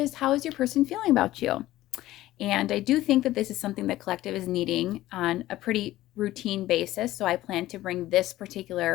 how is your person feeling about you? And I do think that this is something the collective is needing on a pretty routine basis. So I plan to bring this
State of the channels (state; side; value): quieter; right; 15.6 dB